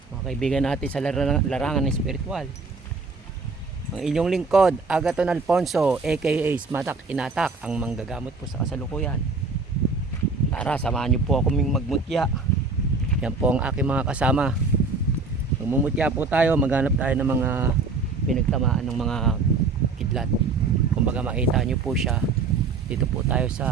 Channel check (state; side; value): quieter; left; 4.1 dB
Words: mga kaibigan natin sa larangan ng spiritual. Ang inyong lingkod, Agaton Alfonso aka Smatak Inatak, ang manggagamot po sa kasalukuyan. Tara, samahan niyo po ako magmutya. Yan po ang aking mga kasama. Magmumutya po tayo, maghanap tayo ng mga pinagtamaan ng mga kidlat. Kumbaga makita niyo po siya. Dito po tayo